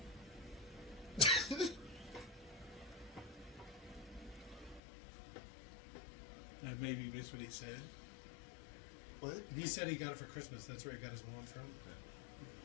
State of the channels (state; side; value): drops out; right; at 4.8 s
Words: I maybe missed what he said. What? He said he got it for Christmas. That's where he got his wand from.